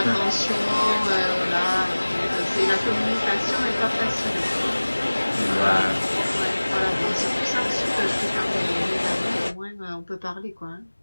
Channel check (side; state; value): both; inverted; correlation -1.00